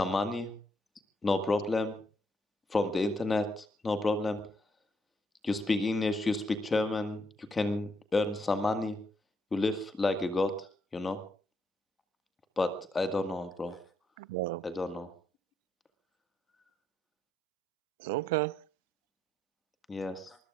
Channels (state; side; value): normal; both; correlation 0.76